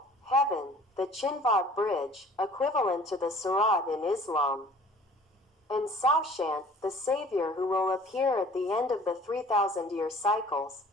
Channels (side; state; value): both; normal; correlation 0.50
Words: heaven, the Chinvat Bridge, equivalent to the Surat in Islam, and Saushant, the Savior who will appear at the end of the 3,000-year cycles,